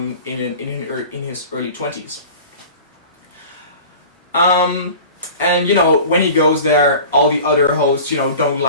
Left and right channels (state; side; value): inverted; both; correlation -0.39